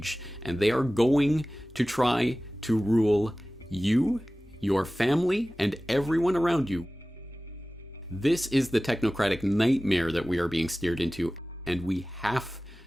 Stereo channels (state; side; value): normal; both; correlation 0.97